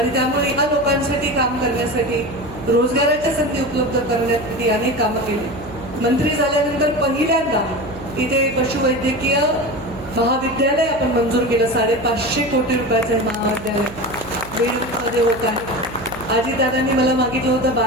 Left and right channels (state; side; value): noise; right; hum, 15 dB below the sound